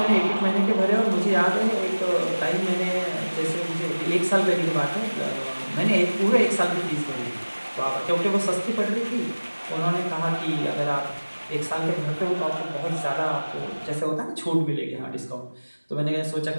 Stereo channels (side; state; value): both; inverted; correlation -1.00